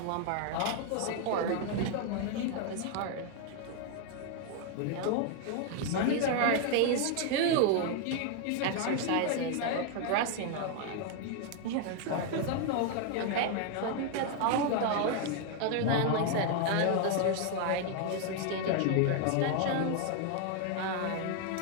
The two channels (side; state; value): both; different; correlation 0.00